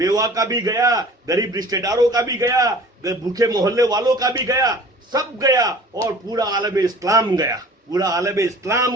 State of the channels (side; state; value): both; normal; correlation 0.46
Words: का भी गया, गरीब रिश्तेदारों का भी गया, भूखे मोहल्ले वालों का भी गया, सब गया और पूरा आलम इस्लाम गया। पूरा आलम